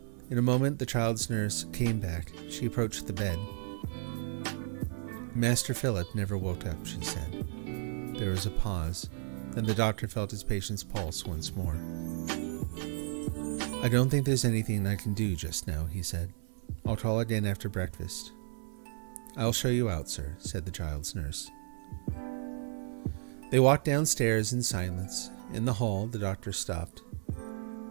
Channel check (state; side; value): silent; left; 56 dB below the other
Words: In a moment the child's nurse came back. She approached the bed. "Master Philip never woke up," she said. There was a pause. Then the doctor felt his patient's pulse once more. "I don't think there's anything I can do just now," he said. "I'll call again after breakfast." "I'll show you out, sir," said the child's nurse. They walked downstairs in silence. In the hall, the doctor stopped.